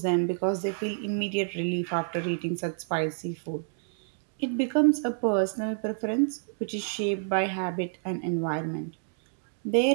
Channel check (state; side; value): silent; left; digital silence